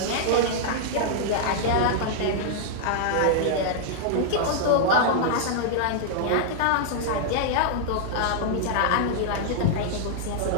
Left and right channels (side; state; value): both; different; correlation -0.01